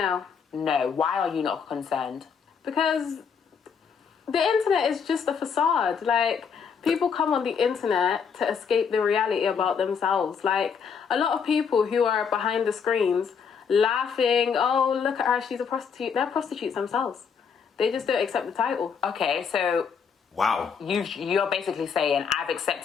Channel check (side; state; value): right; quieter; 6.5 dB